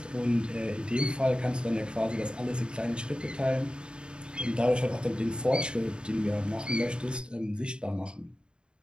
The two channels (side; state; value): left; late; 0.051 ms